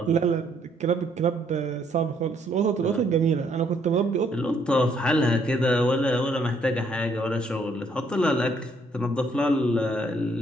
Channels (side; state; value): both; normal; correlation 0.68